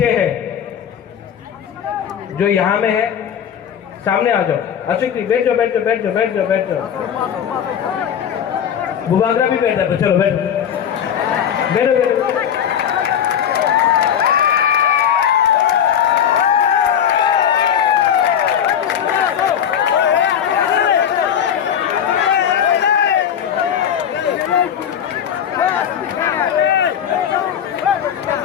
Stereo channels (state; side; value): quieter; right; 8.8 dB